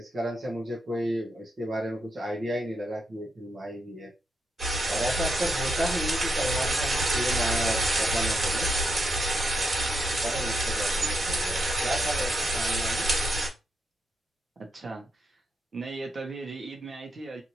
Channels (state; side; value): normal; both; correlation 0.81